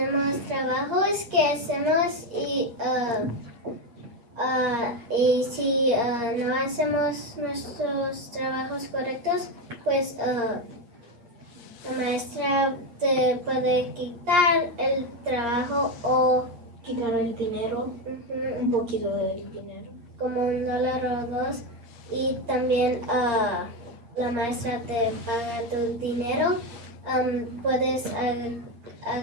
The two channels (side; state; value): left; late; 8.8 ms